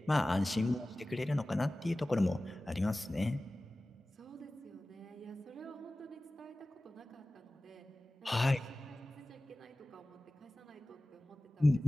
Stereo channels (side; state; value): both; normal; correlation 0.97